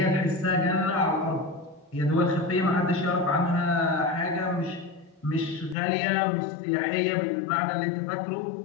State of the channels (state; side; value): drops out; right; at 5.8 s